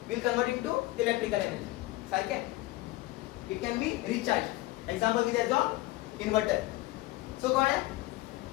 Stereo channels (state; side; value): quieter; right; 18.7 dB